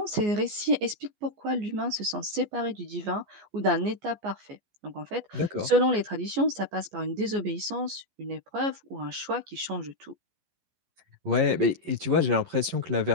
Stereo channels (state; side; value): late; left; 14 ms